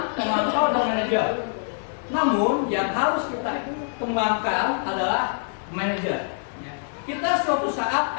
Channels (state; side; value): silent; right; 58 dB below the other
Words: pemantau, dan manajer. Namun yang harus kita kembangkan adalah manajer. Ya. Kita suatu saat